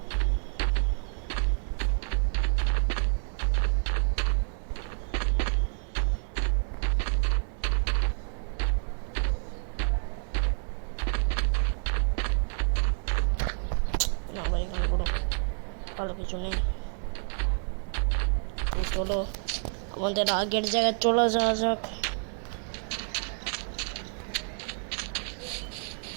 না ভাই, এখানে কোনো ভালো কিছু নেই। চলো আমাদের আগের জায়গায় চলে যাওয়া যাক।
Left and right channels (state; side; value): silent; left; 59 dB below the other